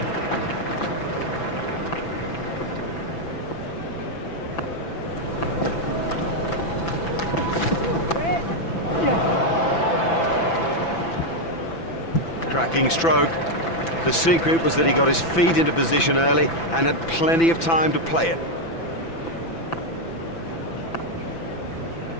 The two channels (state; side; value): late; right; 6.0 ms